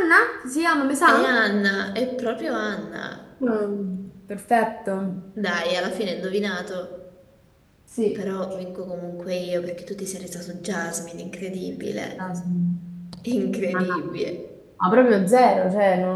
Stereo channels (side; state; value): both; identical; correlation 1.00